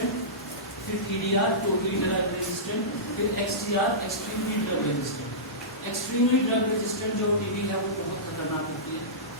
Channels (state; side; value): normal; both; correlation -0.18